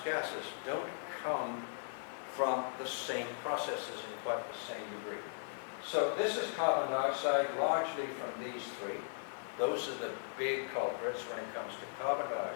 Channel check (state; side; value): silent; right; digital silence